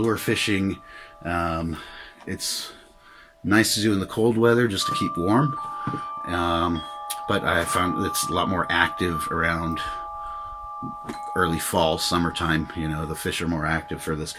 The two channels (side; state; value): both; identical; correlation 1.00